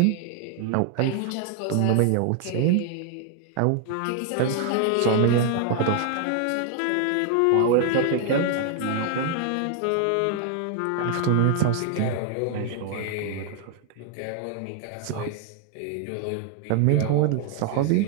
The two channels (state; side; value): different; both; correlation 0.00